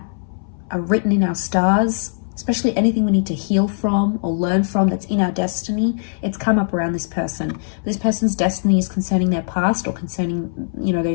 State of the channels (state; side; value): silent; right; 62 dB below the other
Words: are written in our stars, especially anything we need to heal from or learn from that's in our destiny, it's come up around this person. This person's destiny is concerning their past or concerning, you know,